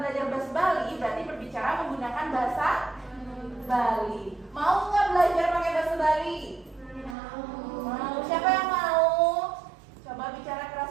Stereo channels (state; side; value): drops out; left; at 7.2 s